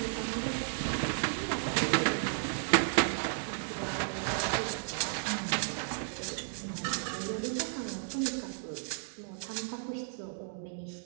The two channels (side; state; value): left; silent; digital silence